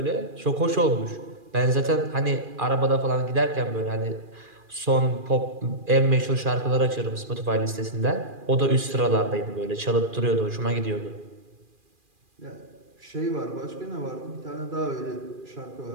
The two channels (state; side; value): late; left; 2.4 ms